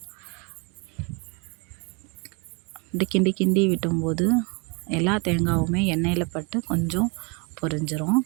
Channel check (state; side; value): quieter; left; 31.8 dB